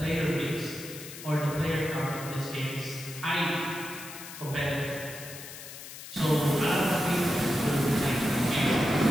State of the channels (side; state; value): left; noise; hiss, 13 dB below the sound